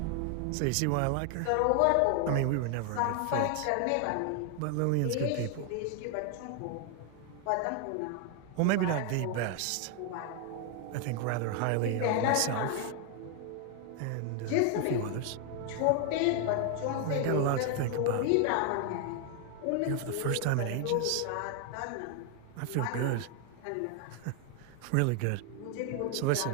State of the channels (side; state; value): both; different; correlation 0.00